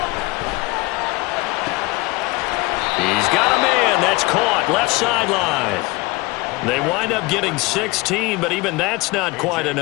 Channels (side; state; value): right; quieter; 23.1 dB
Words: He's got a man. That's caught. Left sideline. They wind up getting 16, but even that's not quite